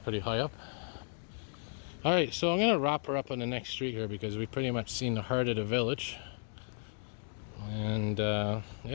high up. Alright, so I'm going to wrap her up on the next street here because we've pretty much seen the heart of the village. And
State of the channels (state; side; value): silent; right; digital silence